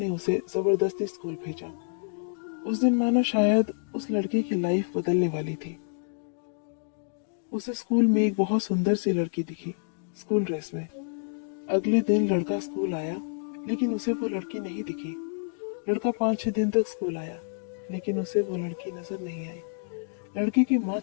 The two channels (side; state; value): right; silent; digital silence